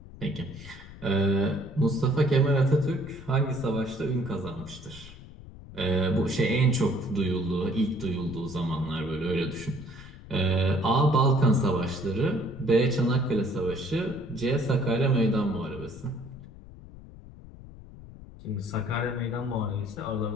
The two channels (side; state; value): left; noise; rumble, 17 dB below the sound